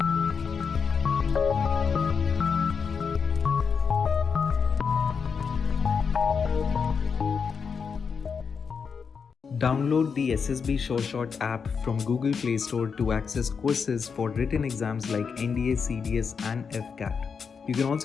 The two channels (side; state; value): right; quieter; 5.9 dB